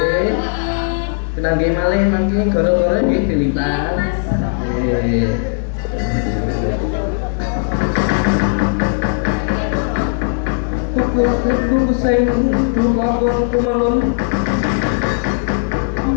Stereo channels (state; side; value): silent; right; 68 dB below the other